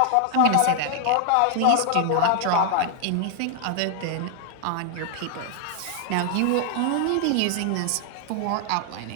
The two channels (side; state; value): both; different; correlation 0.00